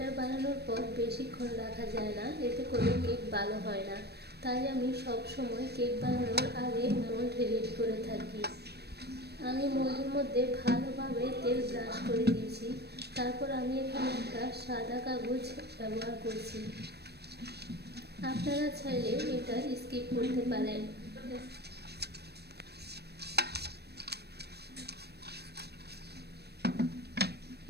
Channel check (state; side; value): late; left; 0.47 ms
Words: বানানোর পর বেশিক্ষণ রাখা যায় না, এতে করে কেক ভালো হয় না। তাই আমি সব সময় কেক বানানোর আগে মোল্ড রেডি করে থাকি। আমি মোল্ডের মধ্যে ভালোভাবে তেল ব্রাশ করে দিয়েছি। তারপর আমি এখানে একটা সাদা কাগজ ব্যবহার করছি। আপনারা চাইলে এটা স্কিপ করতে পারেন।